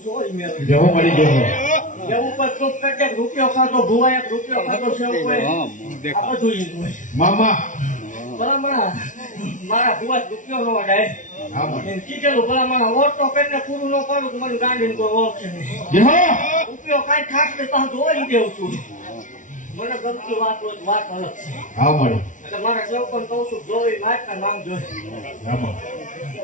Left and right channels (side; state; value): right; late; 0.37 ms